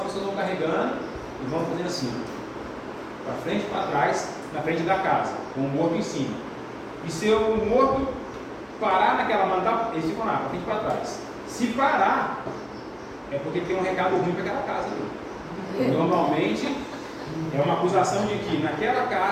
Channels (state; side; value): identical; both; correlation 1.00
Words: pessoas vão carregando e vão fazendo assim, para frente e para trás, na frente da casa, com o morto em cima. E se o morto parar naquela manda, eles ficam lá, para frente e para trás. Se parar, é porque tem um recado ruim para aquela casa ali. Normalmente, é uma acusação de que naquela